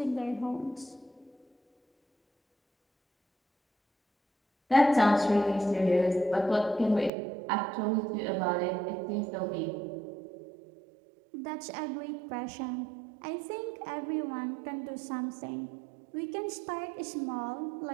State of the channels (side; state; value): left; drops out; at 7.1 s